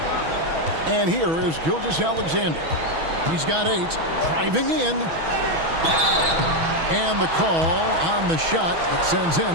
And here is Gilgeous-Alexander. He's got 8. Driving in. And the call on the shot that sends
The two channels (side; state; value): left; late; 6.2 ms